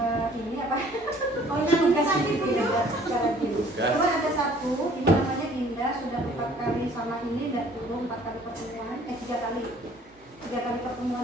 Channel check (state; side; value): normal; both; correlation 0.56